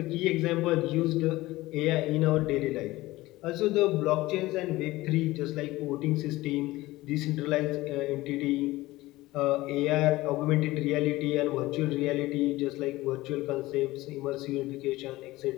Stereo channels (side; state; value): right; quieter; 18.6 dB